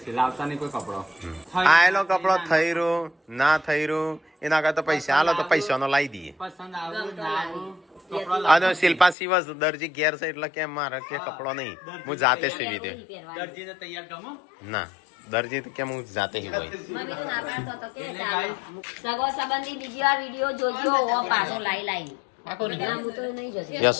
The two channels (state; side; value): drops out; right; at 9.2 s